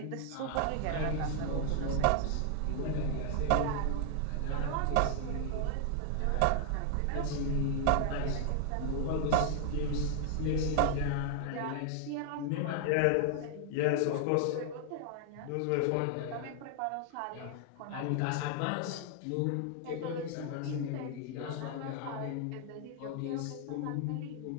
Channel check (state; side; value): different; both; correlation 0.00